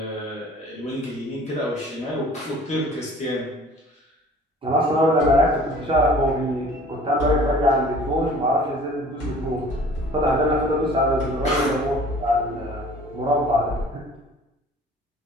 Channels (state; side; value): normal; both; correlation 0.49